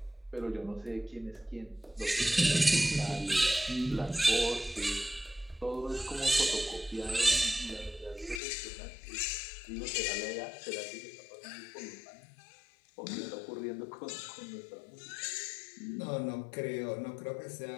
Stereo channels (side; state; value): right; drops out; at 8.4 s